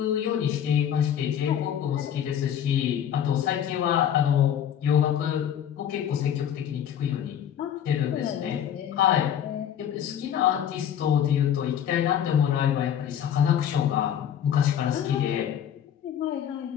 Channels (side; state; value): right; quieter; 9.5 dB